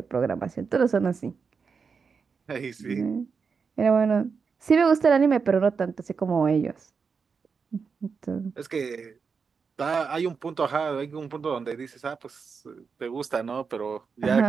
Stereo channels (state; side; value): quieter; left; 5.5 dB